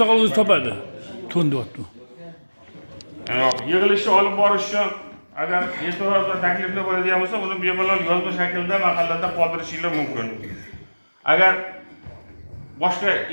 o'zi topadi. To'ndi o'tdi. Yig'ilishni olib borish uchun agar e'tiroz va takliflar bo'ladigan bo'lsa, uni bemalol yozma shaklda mahallada qoldirishinglar mumkin. Agar boshqa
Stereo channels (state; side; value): inverted; both; correlation -1.00